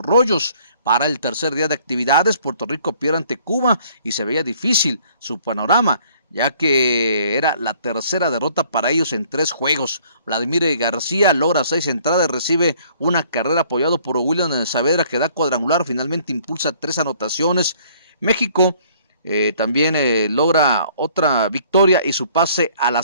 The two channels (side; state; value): both; inverted; correlation -0.59